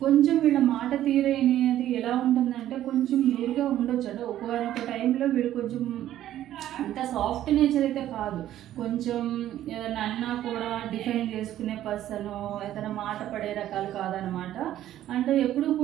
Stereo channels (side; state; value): left; quieter; 12.6 dB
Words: కొంచెం వీళ్ళ మాట తీరనేది ఎలా ఉంటుందంటే కొంచెం రూడ్గా ఉండొచ్చు. అంటే ఒక్కొక్క టైంలో వీళ్ళు కొంచెం అంత సాఫ్ట్ నేచర్ అయితే కాదు. కొంచెం ఏదైనా అన్నా కూడా డిఫైన్ చేసుకునే పర్సన్, ఏదైనా మాట పడే రకాలు కాదనమాట. అంటే ఎప్పుడు